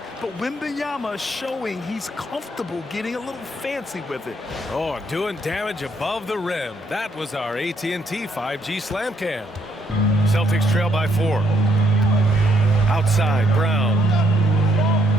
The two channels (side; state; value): both; normal; correlation 0.71